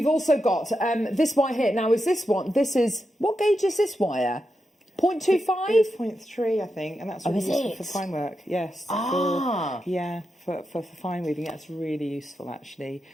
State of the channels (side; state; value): both; normal; correlation 0.87